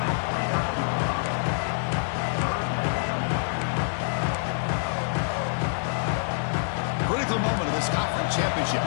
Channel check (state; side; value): silent; right; digital silence